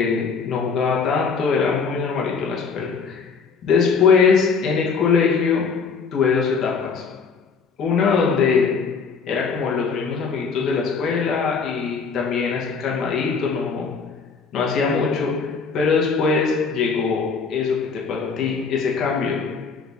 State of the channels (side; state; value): right; quieter; 5.3 dB